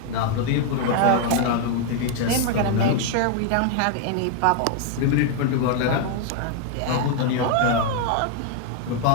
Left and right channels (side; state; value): both; different; correlation 0.00